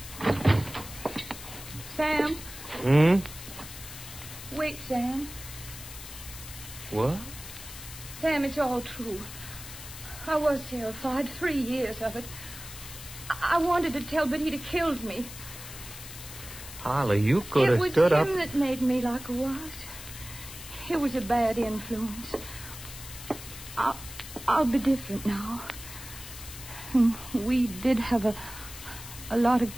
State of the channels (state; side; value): noise; left; hiss, 13 dB below the sound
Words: Sam. Wait, Sam. What? Sam, it's all true. I was terrified. 3 years of it. I wanted to tell, but he'd have killed me. Holly, you could have stood up. It was him that made me like I was. It was a bad influence. I'll be different now. We did have a lot of